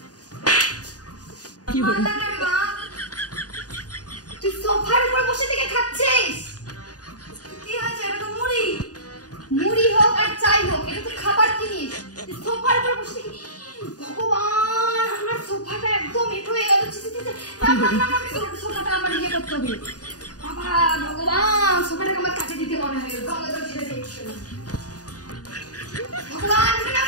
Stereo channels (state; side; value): late; right; 0.68 ms